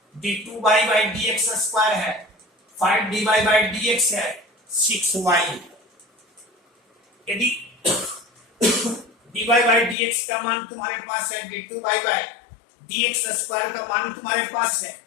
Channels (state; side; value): drops out; right; at 10.0 s